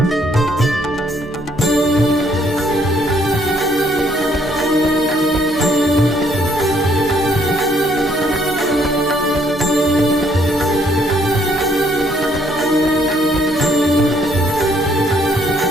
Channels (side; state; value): both; normal; correlation 0.67